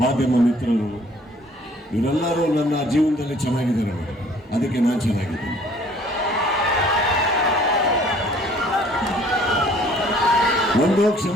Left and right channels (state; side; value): normal; both; correlation 0.56